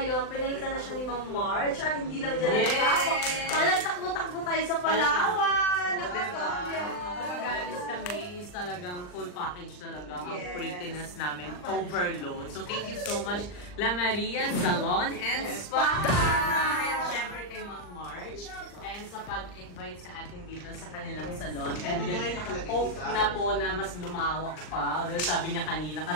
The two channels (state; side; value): late; right; 39 ms